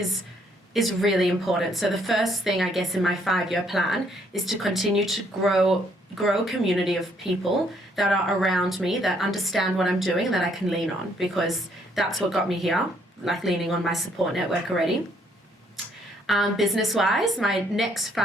really important. So the first thing, I guess, in my 5-year plan is to continue to grow a community of people that are around me, that understand what I'm doing and that I can lean on, because that's what got me here, like leaning on my support network already. Business-wise, my next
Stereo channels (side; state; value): both; normal; correlation 0.67